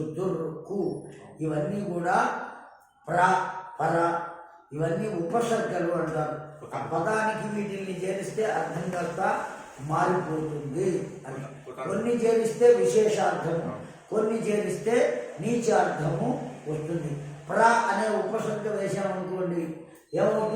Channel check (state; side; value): identical; both; correlation 1.00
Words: దుర్రు, కు, ఇవన్నీ కూడా ప్ర, పర, ఇవన్నీ ఉపసర్గలు అంటారు. ఆ పదానికి వీటిని చేరిస్తే అర్థం కాస్త మారిపోతుంది అని. కొన్ని చేరిస్తే విశేషార్థము, కొన్ని చేరిస్తే నీచార్థము వస్తుంది. ప్ర అనే ఉపసర్గ వేశామనుకోండి,